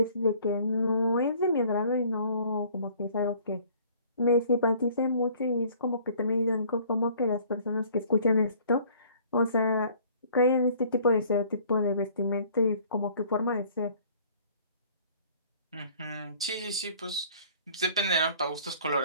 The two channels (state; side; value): inverted; both; correlation -0.55